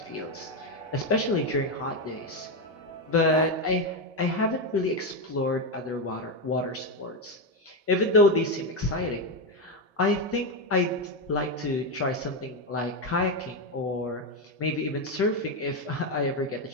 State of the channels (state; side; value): normal; both; correlation 0.08